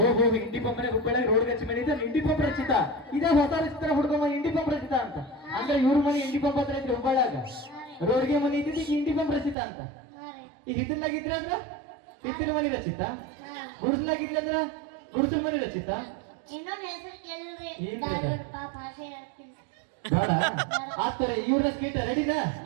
ಇಂಡಿ ಪಂಪ್ ಹುಬ್ಬಳ್ಳಿ ರೋಡ್ ಗಚ್ಚೆ ಮನಿ ಇದೆ ಇಂಡಿ ಪಂಪ್ ರಚಿತಾ. ಇದೇ ಹೊಸ ರಚಿತಾ ಹುಡ್ಕೊಂಬ ಇಂಡಿ ಪಂಪ್ ರಚಿತಾ ಅಂತ. ಅಂದ್ರೆ ಇವ್ರ ಮನಿ ಇಂಡಿ ಪಂಪ್ ಹತ್ರ ಇದ್ರಿ ಹುಬ್ಬಳ್ಳಿಯಾಗ ರೋಡ್ಗೆ ಮನಿ ಇದ್ದಿದ್ದು ಈಗ ಇಂಡಿ ಪಂಪ್ ರಚಿತಾ ಅಂತ. ಈಗ ಹಿತ್ತಲ್ನಾಗಿದ್ರೆ ಅಂದ್ರ ಹಿತ್ತಲ ಮನಿ ರಚಿತಾ, ಗುಡ್ಸ್ಲಾಗಿದ್ರೆ ಅಂದ್ರ ಗುಡ್ಸಲ್ ಮನಿ ರಚಿತಾ. ಇನ್ನೊಂದು ಹೆಸರು ಕೇಳಿಲ್ರಿ ಭಾಷೆ ಹೇಳ್ತೀನಿ ಬೇಡ ಆತರಿ. ಇವ್ರನ್ನ ಸ್ಕೀಟ್ ರೆಡಿನಾ?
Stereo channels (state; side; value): drops out; left; at 9.6 s